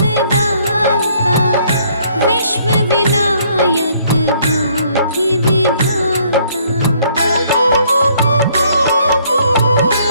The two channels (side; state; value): both; inverted; correlation -0.64